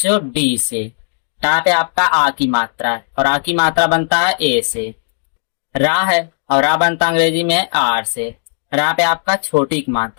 डी से। डा पे आपका आ की मात्रा है और आ की मात्रा बनता है ए से। रा है और रा बनता अंग्रेजी में आर से। रा पे आपका छोटी की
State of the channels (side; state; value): right; silent; digital silence